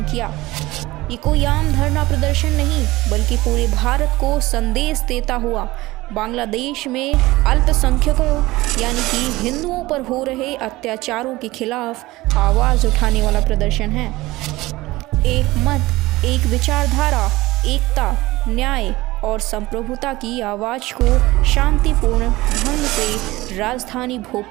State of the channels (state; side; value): quieter; left; 19.2 dB